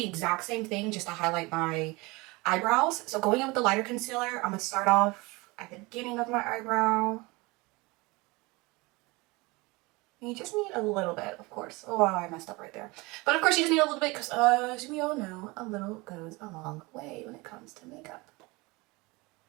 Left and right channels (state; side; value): quieter; left; 24.2 dB